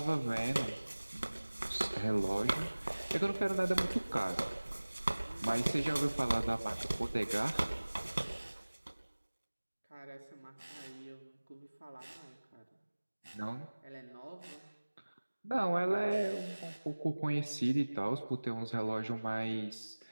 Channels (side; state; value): both; inverted; correlation -1.00